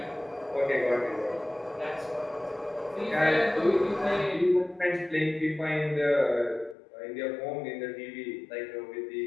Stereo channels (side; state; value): right; drops out; at 6.8 s